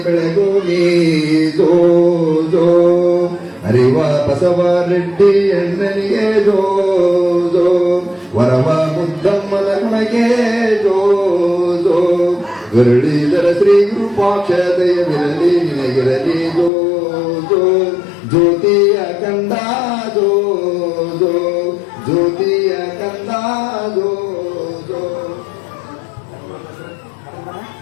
ಬೆಳಗೋಗಿ ಜೋ ಜೋ ಅರಿವ ಬಸವರೆಡ್ಡಿ ಅಣ್ಣನಿಗೆ ಜೋ ಜೋ ವರವ ಮುದ್ದಮ್ಮನ ಗುಣಗೆ ಜೋ ಜೋ ಗರುಡಿದರ ಶ್ರೀ ವಿರೂಪಾಕ್ಷದಯ ವಿರಲಿ ನಿನಗಿರಲಿ ಜೋ ಜೋ ಜ್ಯೋತಿಯ ಕಂದ ಜೋ ಜೋ ಜ್ಯೋತಿಯ ಕಂದ ಜೋ ಜೋ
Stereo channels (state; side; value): drops out; right; at 16.7 s